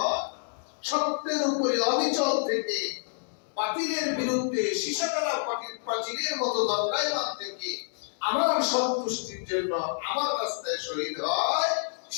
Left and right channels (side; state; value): right; silent; digital silence